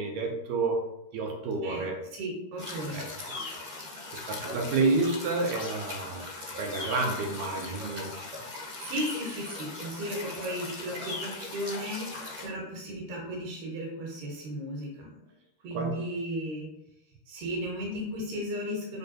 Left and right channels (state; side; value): late; left; 13 ms